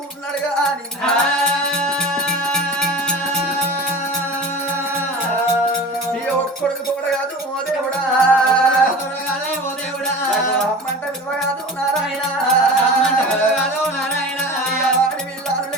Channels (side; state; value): both; normal; correlation 0.35